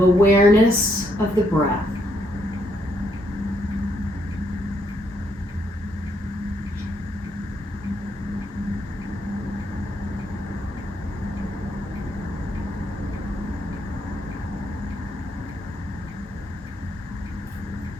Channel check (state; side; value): normal; both; correlation 0.75